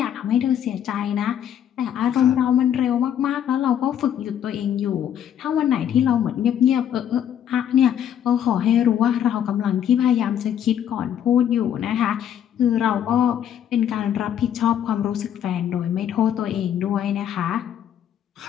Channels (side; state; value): right; quieter; 9.7 dB